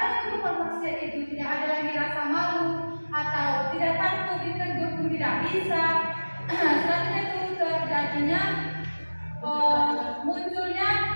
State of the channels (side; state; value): both; inverted; correlation -1.00